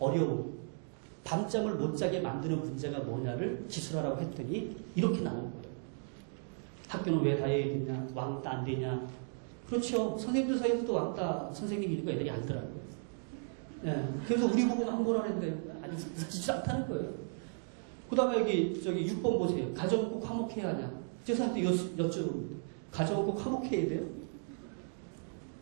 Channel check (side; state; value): left; silent; 54 dB below the other